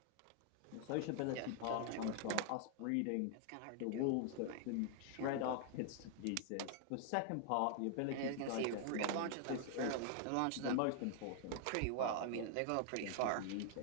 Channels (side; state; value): both; different; correlation 0.00